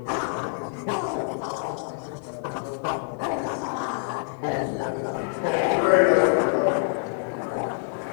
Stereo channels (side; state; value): right; silent; 61 dB below the other